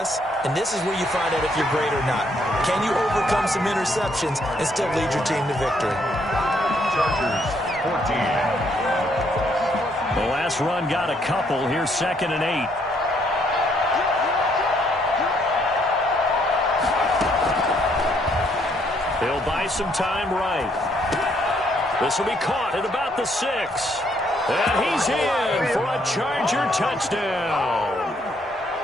and this is where you find out if you're great or not. Can you overcome some interceptions and still lead your team to victory? Chargers 14. The last run got a couple. Here's 2nd and 8. He'll buy some time right. This will be caught at about the 6. And he's in for a Charger touchdown.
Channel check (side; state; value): both; normal; correlation 0.70